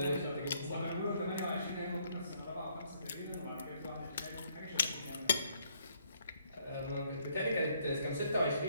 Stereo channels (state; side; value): inverted; both; correlation -0.68